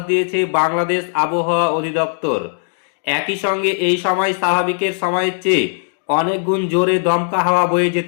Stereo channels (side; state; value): right; silent; digital silence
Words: দিয়েছে বাংলাদেশ আবহাওয়া অধিদপ্তর। একই সঙ্গে এই সময় স্বাভাবিকের সময়ের চেয়ে অনেক গুণ জোরে দমকা হাওয়া বয়ে